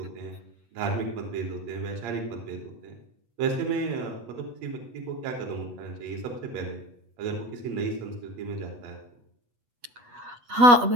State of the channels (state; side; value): late; left; 8.2 ms